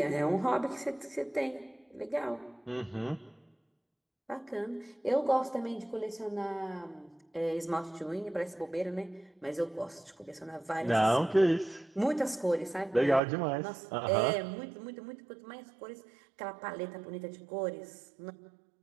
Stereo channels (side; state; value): left; drops out; at 13.2 s